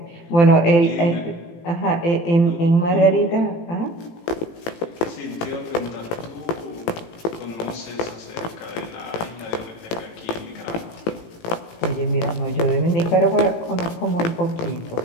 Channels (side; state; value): right; late; 18 ms